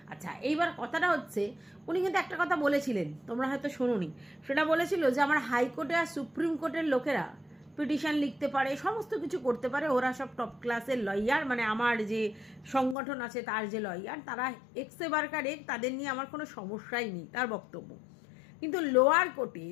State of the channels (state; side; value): drops out; right; at 13.0 s